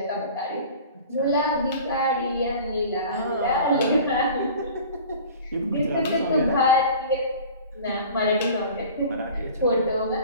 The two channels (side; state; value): both; inverted; correlation -0.42